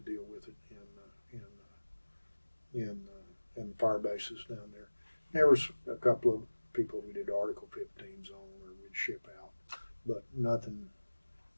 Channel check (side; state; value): both; inverted; correlation -1.00